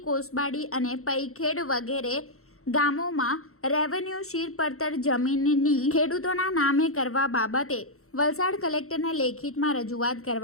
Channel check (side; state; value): right; late; 0.63 ms